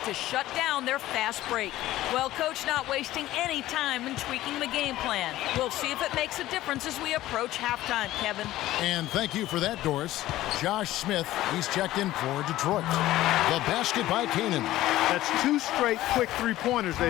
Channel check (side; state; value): right; quieter; 15.3 dB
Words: to shut down their fast break. Well, Coach not wasting any time in tweaking the game plan. We'll see if it makes a difference as we approach halftime, Kevin. And thank you for that, Doris. Josh Smith, he's checked in for Detroit. The basket by Kanan. That's 2 straight quick 3-pointers